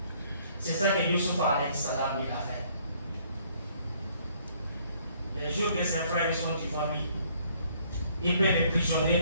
C'est ça que Yusuf alayhi salam lui a fait. Les jours que ses frères sont devant lui, il peut les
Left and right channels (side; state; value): both; inverted; correlation -0.63